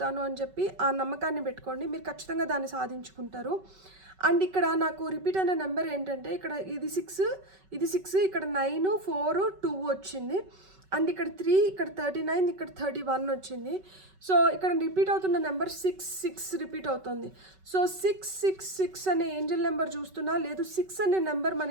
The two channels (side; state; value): left; late; 5.3 ms